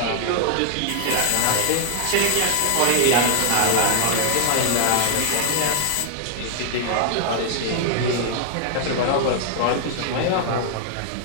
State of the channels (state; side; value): different; both; correlation -0.01